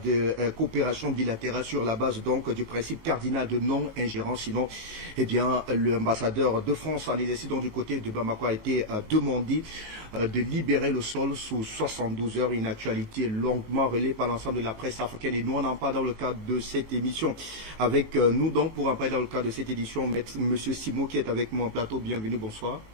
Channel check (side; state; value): left; late; 19 ms